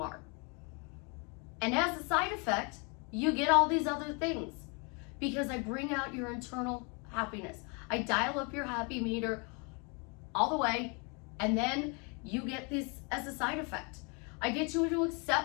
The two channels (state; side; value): quieter; right; 33.3 dB